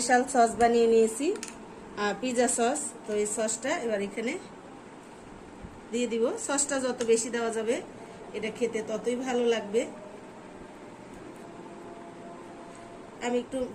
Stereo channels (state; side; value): identical; both; correlation 1.00